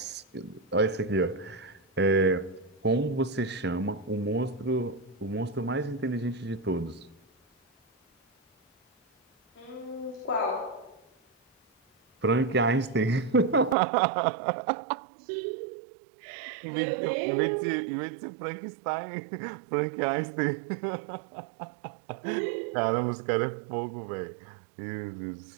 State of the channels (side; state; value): left; drops out; at 13.8 s